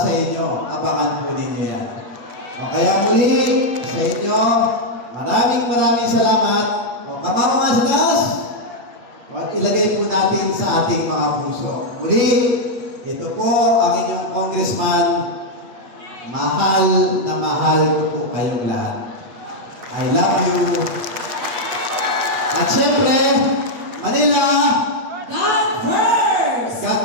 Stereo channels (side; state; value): left; late; 8.1 ms